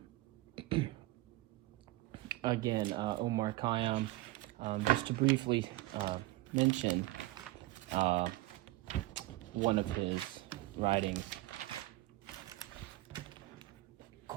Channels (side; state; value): left; quieter; 18.6 dB